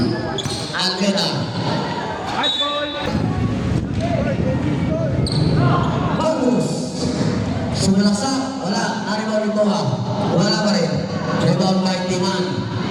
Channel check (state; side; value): identical; both; correlation 1.00